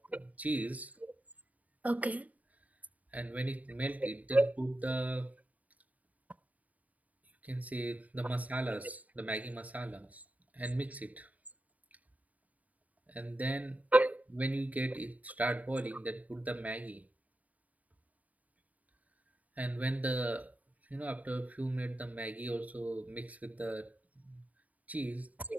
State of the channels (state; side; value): late; left; 0.073 ms